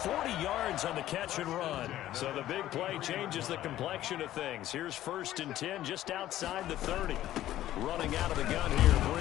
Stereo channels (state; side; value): quieter; right; 13.5 dB